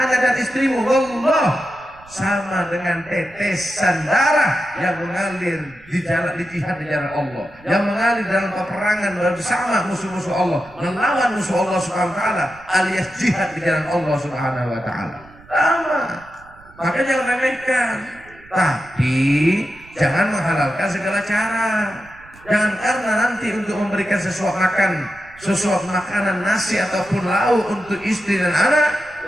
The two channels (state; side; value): noise; right; rumble, 24 dB below the sound